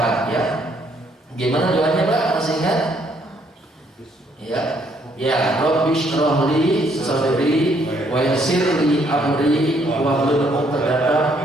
ya. Gimana doanya Pak? Masih ingat? Ya. Ya, Rabbi shrah li sadri wa yassir li amri wahlul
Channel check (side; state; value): both; normal; correlation 0.68